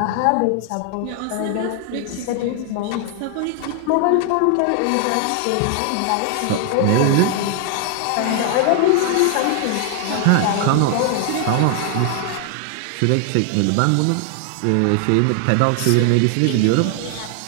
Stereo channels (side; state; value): both; different; correlation 0.00